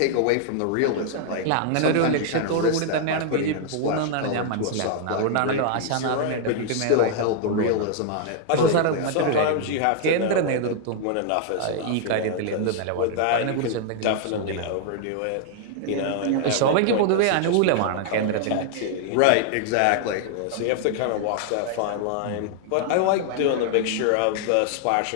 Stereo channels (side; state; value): both; different; correlation 0.00